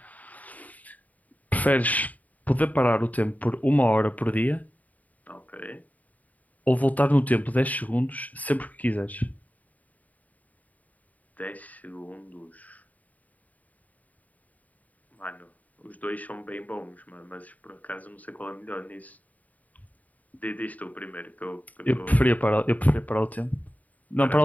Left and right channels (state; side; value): late; right; 0.074 ms